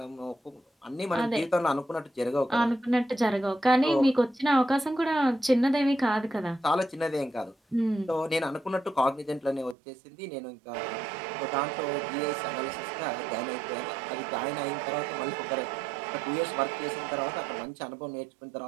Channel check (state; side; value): drops out; left; at 9.8 s